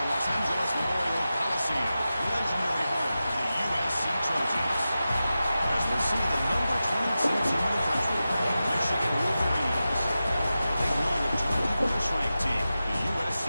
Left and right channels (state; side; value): inverted; both; correlation -0.93